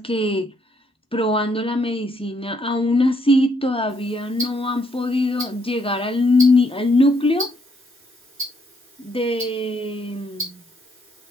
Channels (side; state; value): both; normal; correlation 0.72